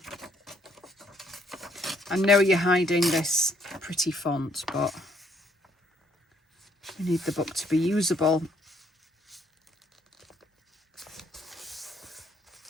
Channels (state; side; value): normal; both; correlation 0.68